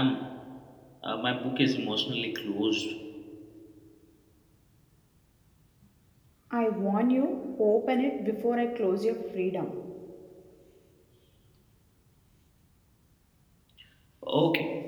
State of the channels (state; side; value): identical; both; correlation 1.00